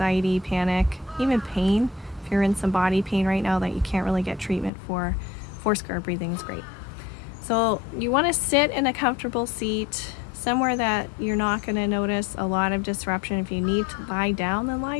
panic, even pain you're in some body pain right now that you can't really get treatment for, Foursquare Breathing is great. So you want to sit in a comfortable seat, somewhere that you're not going to notice a lot of disruption. If you need to lie down, then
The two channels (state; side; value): drops out; right; at 4.7 s